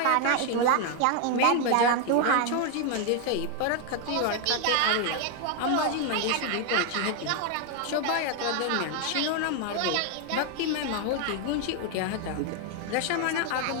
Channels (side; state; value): both; different; correlation 0.01